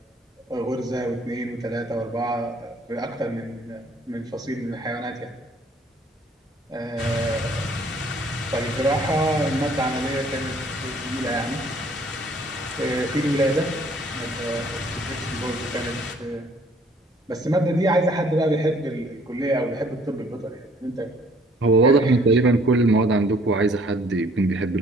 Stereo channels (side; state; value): both; normal; correlation 0.59